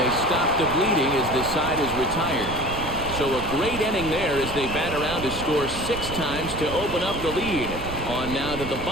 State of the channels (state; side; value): noise; right; rumble, 9 dB below the sound